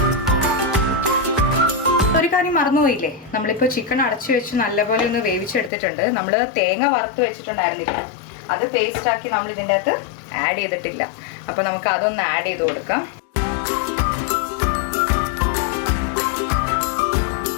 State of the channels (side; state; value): right; drops out; at 5.7 s